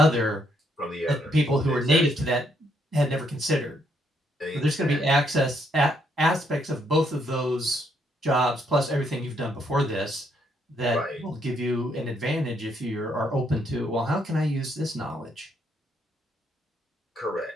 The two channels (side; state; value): both; normal; correlation 0.73